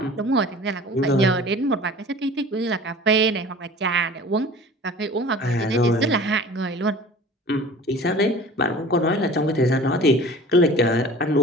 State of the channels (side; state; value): both; normal; correlation 0.43